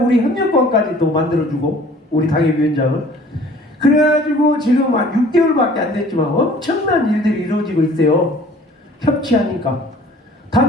우리 협력관까지 또 만들어주고, 우리 당협위원장을. 그래가지고 지금 한 6개월밖에 안 됐지만 엄청난 일들이 이루어지고 있어요. 협치하니까.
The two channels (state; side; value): normal; both; correlation 0.51